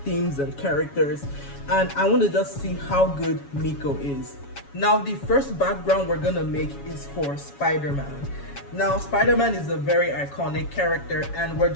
and characters, and I want to just see how good Mico is. Now the first background we're gonna make is for Spider-Man. Now, Spider-Man is a very iconic character and we're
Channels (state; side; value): late; right; 7.1 ms